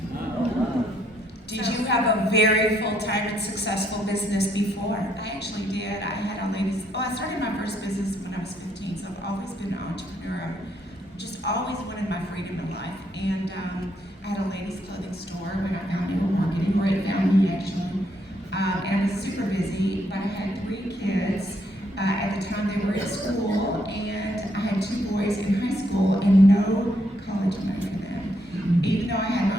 Did you have a very full-time and successful business before? I actually did. I had a ladies, I started my first business when I was 15, so I've always been an entrepreneur. I've just always wanted my freedom in life. And I had a ladies clothing store when I found network marketing, or it found me actually. And I was super busy, but I had 3 kids. At the time they were in school, and I had 2 boys in high school and no college money for them. Even though I had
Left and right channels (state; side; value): normal; both; correlation 0.73